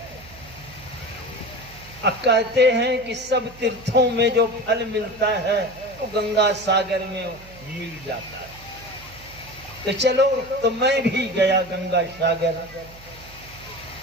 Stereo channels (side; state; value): right; noise; hum, 21 dB below the sound